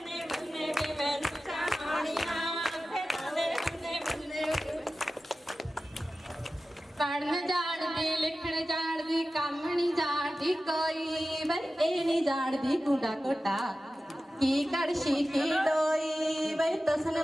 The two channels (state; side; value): normal; both; correlation 0.95